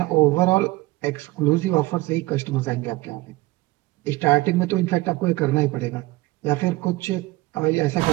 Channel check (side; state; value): left; quieter; 20.2 dB